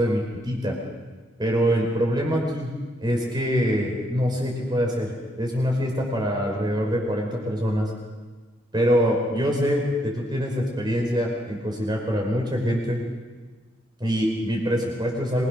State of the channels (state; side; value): normal; both; correlation 0.75